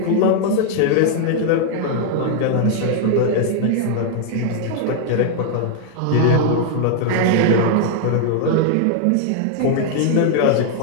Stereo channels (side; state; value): both; different; correlation 0.00